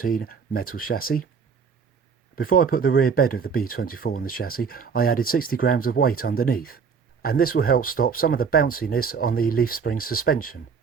metal chassis. Before I put the rear bed of the B24 on the chassis, I added 60 grams of weight underneath, and this will help stop some of the bounciness on the leaf spring suspension.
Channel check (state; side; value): quieter; left; 6.0 dB